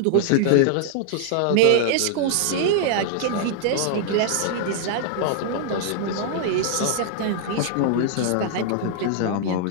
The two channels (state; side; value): different; both; correlation -0.01